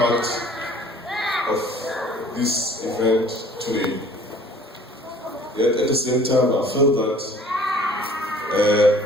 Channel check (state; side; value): normal; both; correlation 0.52